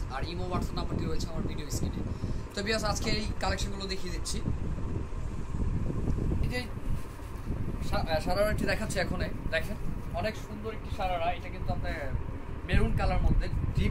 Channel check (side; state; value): both; identical; correlation 1.00